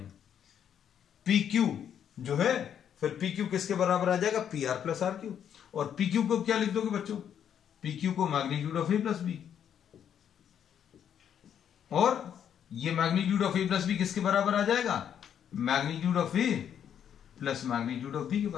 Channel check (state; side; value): quieter; right; 9.0 dB